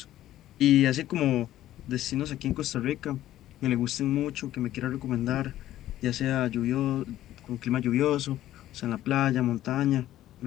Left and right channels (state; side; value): quieter; right; 13.5 dB